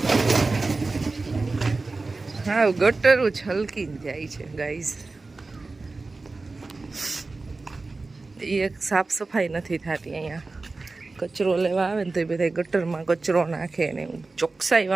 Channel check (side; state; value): left; quieter; 3.6 dB